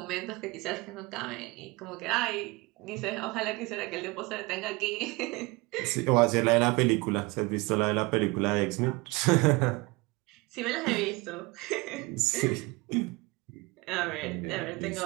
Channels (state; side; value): quieter; left; 24.9 dB